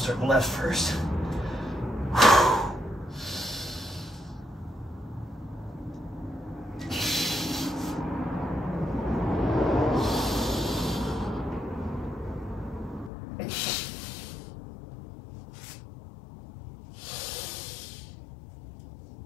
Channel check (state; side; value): drops out; right; at 13.1 s